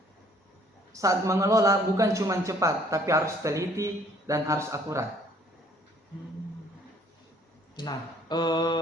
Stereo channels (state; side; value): normal; both; correlation 0.59